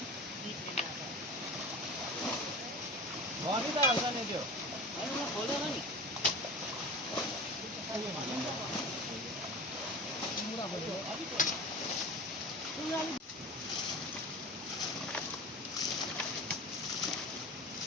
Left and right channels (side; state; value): both; normal; correlation 0.33